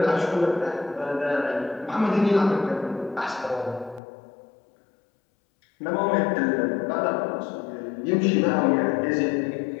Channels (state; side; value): drops out; right; at 4.0 s